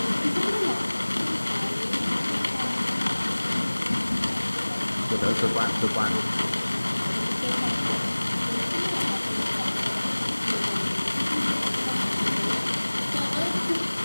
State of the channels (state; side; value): inverted; both; correlation -1.00